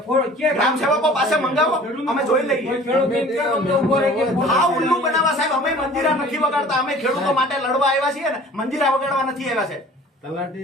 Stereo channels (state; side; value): normal; both; correlation 0.47